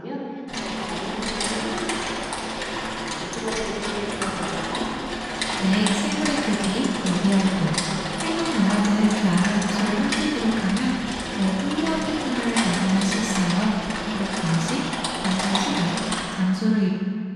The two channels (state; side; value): identical; both; correlation 1.00